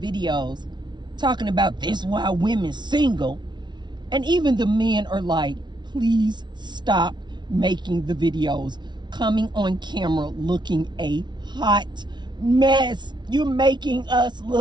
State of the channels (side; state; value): left; late; 0.21 ms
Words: talking about this why women single. And even the men are like, please stop making the videos, coming on camera looking a hot mess. You're making us